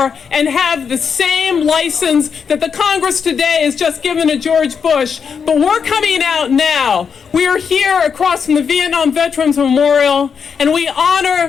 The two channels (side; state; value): right; quieter; 6.4 dB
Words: and have the same license that the Congress today has just given to George Bush. But we're coming out now. We are here across from the Vietnam Veterans Memorial, and we